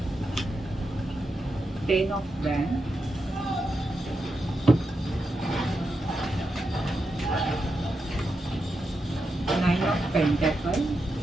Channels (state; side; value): normal; both; correlation 0.86